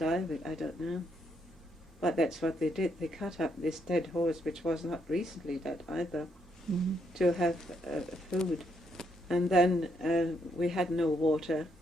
of it, I don't know. But that's what they did. They cut up this dead horse, which was not recently dead either, to have food. And then we had no water,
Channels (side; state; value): both; normal; correlation 0.75